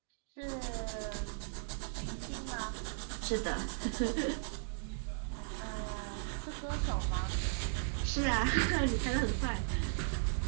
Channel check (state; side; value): silent; left; digital silence